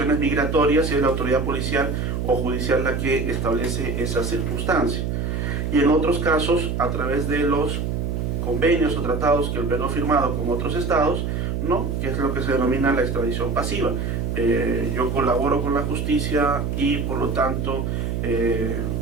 migratorias y es la autoridad policial o judicial la que establece esa circunstancia. Y en otros casos, a través de los convenios o tratados que el Perú ha firmado con otros estados, ¿no? Que es lo que se denomina la extradición pasiva. Yo colaboro con la justicia y por lo tanto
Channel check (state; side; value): noise; right; hum, 1 dB below the sound